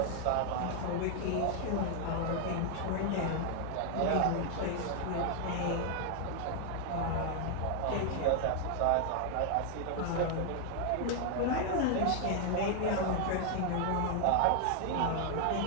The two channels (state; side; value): different; both; correlation 0.00